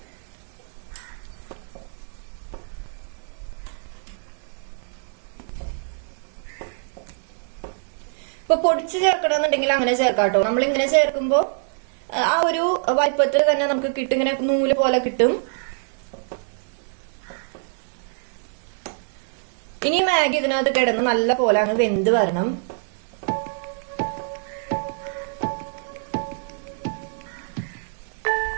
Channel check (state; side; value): silent; left; 62 dB below the other